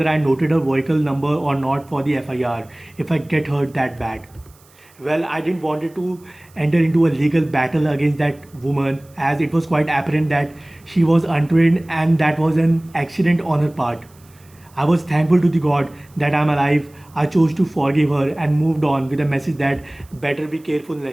I noted her vehicle number or not for the FIR if I get hurt that bad. Well, I didn't wanted to enter into a legal battle against that woman as it was quite apparent that she was untrained and that was an accident on her part. I was thankful to the God that I'm alive. I chose to forgive her and moved on with a message that better be careful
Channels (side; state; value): right; noise; hiss, 29 dB below the sound